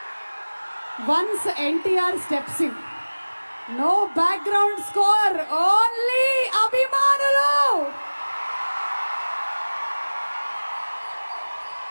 once NTR steps in, no background score, only అభిమానులు.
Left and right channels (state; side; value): inverted; both; correlation -1.00